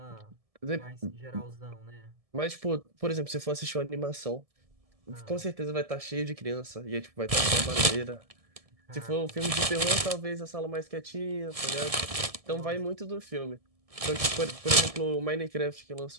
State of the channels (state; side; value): late; left; 1.7 ms